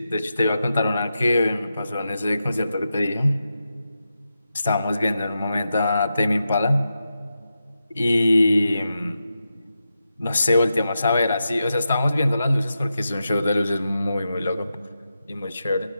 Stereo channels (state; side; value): inverted; both; correlation -0.89